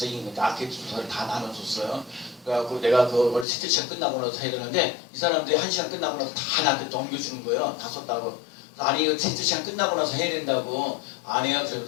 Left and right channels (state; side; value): drops out; right; at 3.5 s